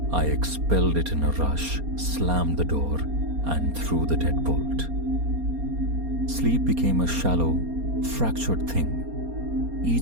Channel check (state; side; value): late; left; 4.3 ms